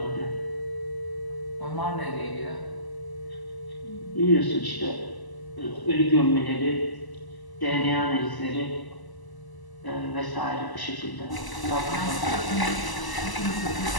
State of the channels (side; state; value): right; late; 1.0 ms